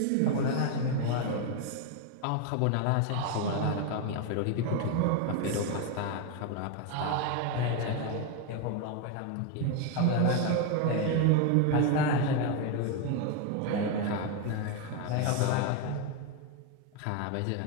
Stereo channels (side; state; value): both; different; correlation 0.01